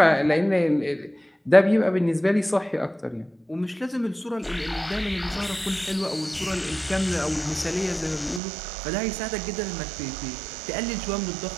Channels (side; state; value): left; drops out; at 8.4 s